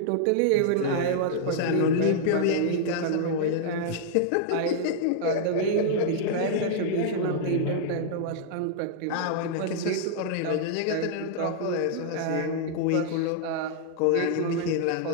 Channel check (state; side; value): different; both; correlation -0.01